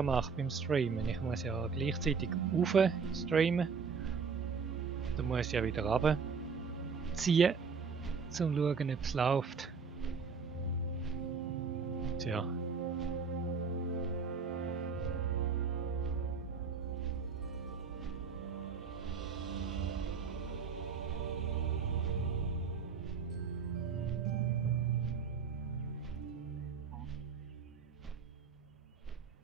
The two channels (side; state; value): left; quieter; 5.5 dB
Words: macht beim Streamen. Ich muss ja gleichzeitig rauf streamen. Dann muss ich ja wieder runterziehen, um zu schauen, ob es läuft. Tja.